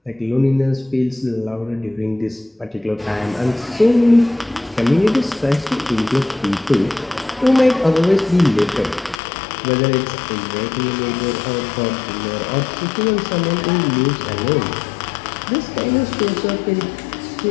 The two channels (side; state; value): right; drops out; at 9.2 s